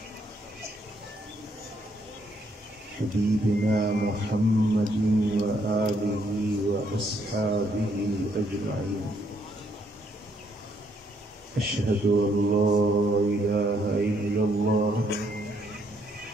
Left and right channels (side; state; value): both; normal; correlation 0.71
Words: हबीबिना मुहम्मदिन व आलिहि व अस्हाबिहि अजमईन। अशहदु अल्ला इलाहा इल्लल्लाह